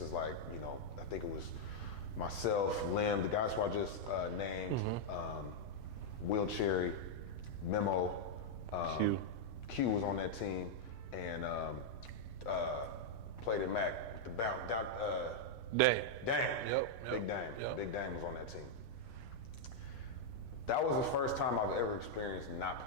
is like, I think it was myself, Lim, the guys who I just named, Will Cherry, Memo, Q was on that team, and played at Mac with the bounce. Dame. Yep. Big Dame. Yep. Big Dame was on that team. That was the first time I've ever experienced not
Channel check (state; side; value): late; right; 3.7 ms